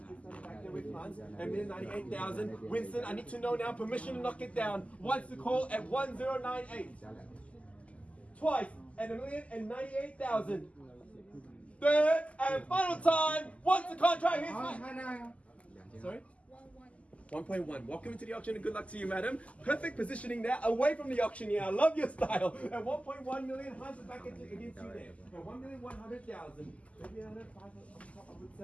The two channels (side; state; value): right; late; 0.066 ms